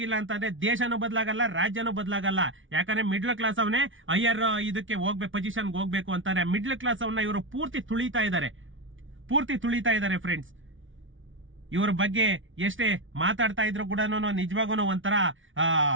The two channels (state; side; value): late; left; 0.57 ms